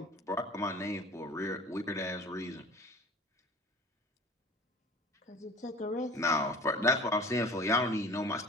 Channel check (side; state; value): both; normal; correlation 0.44